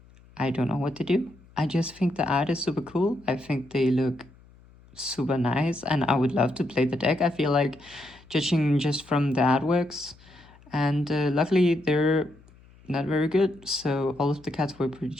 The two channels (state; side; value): noise; left; hum, 26 dB below the sound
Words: don't know what to do. I just think the art is super cool. I think they look super nice, and I would love to play the deck. I feel like, judging just from the artworks, and luckily they're not very good, so all of the cards were pretty